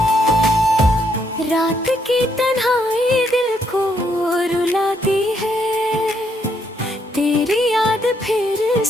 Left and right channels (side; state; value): both; normal; correlation 0.74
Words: रात की तन्हाई दिल को रुलाती है, तेरी याद फिर